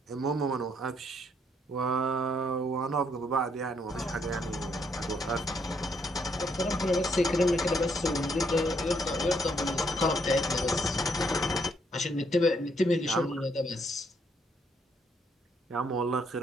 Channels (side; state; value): both; normal; correlation 0.72